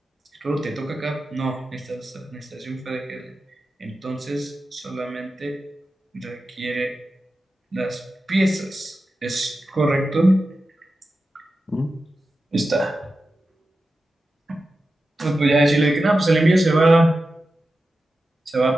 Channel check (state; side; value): normal; both; correlation 0.92